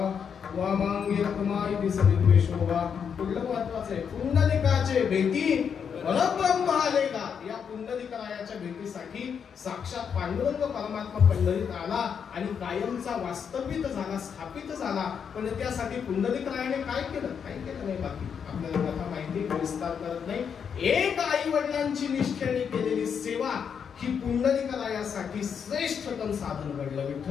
वामांगी रखमाई दिसविद्वे शोभा. पुढलं महत्वाचं आहे, पुंडलिकाचे भेटी परब्रह्म आलेला. या पुंडलिकरायाच्या भेटीसाठी साक्षात पांडुरंग परमात्मा पंढरीत आला आणि कायमचा वास्तविक झाला, स्थापित झाला. पण त्यासाठी पुंडलिकरायाने काय केलं? काही केलं नाही. बाकी आपल्याला कथा माहिती, विस्तार करत नाही. एक आई वडिलांची निष्ठेने केलेली सेवा ही पुंडलिकरायासाठी श्रेष्ठतम साधन घडलं.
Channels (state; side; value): quieter; right; 7.1 dB